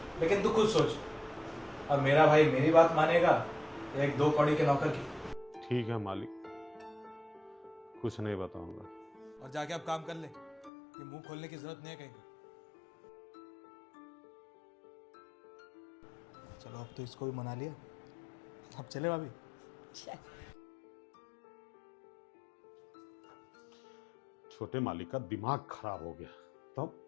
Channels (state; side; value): drops out; right; at 10.7 s